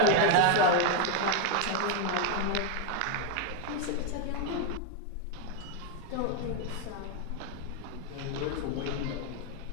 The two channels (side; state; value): both; different; correlation 0.01